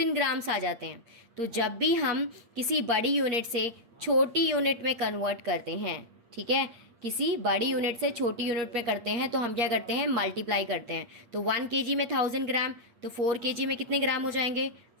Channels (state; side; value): late; left; 8.6 ms